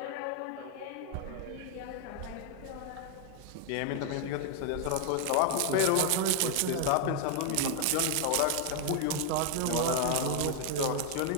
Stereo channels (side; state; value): both; different; correlation 0.00